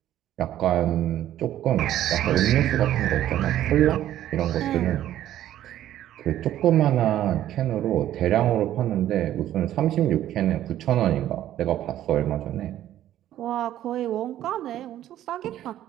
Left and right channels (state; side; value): quieter; left; 12.4 dB